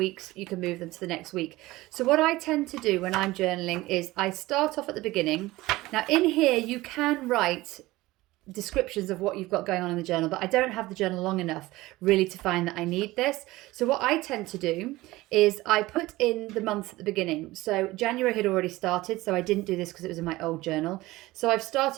You can move them to the next week. So what I tend to do when I'm journaling is I start off at the beginning. Now in here you can write descriptions of what you've got going on in the journal, but I don't have the journal long enough really to find that I need this. So what I tend to do is I put in the month at the beginning. So January had already started, so I didn't do this because it was in my old journal. So I've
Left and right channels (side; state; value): left; quieter; 18.8 dB